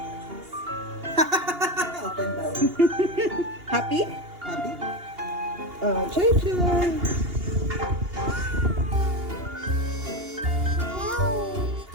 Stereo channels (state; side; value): late; left; 2.8 ms